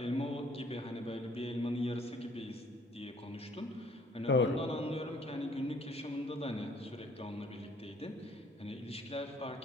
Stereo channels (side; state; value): both; normal; correlation 0.59